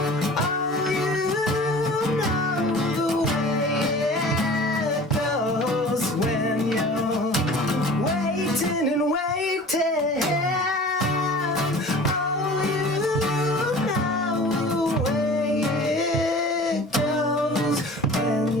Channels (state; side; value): normal; both; correlation 0.42